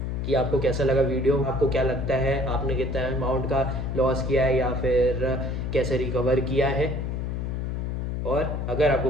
कि आपको कैसा लगा वीडियो, आपको क्या लगता है आपने कितना अमाउंट का लॉस किया है या फिर कैसे रिकवर किया है। और अगर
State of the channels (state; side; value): noise; left; hum, 2 dB below the sound